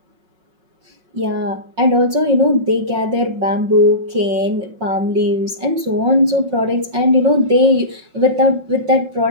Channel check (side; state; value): left; late; 5.6 ms